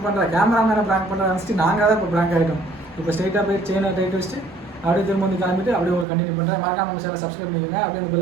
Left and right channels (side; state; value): left; drops out; at 6.1 s